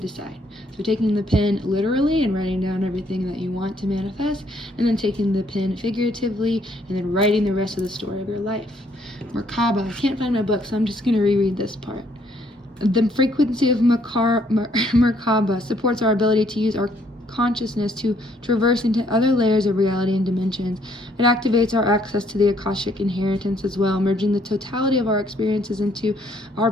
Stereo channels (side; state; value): both; normal; correlation 0.67